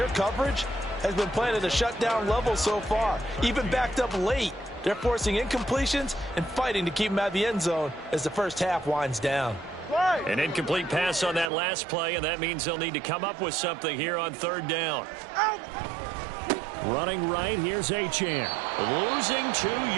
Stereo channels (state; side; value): drops out; left; at 11.5 s